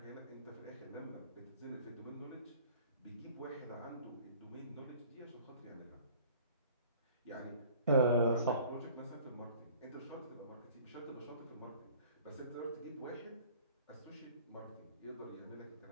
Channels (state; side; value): inverted; both; correlation -0.50